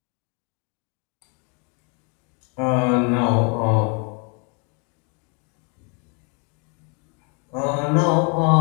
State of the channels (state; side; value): quieter; right; 36.7 dB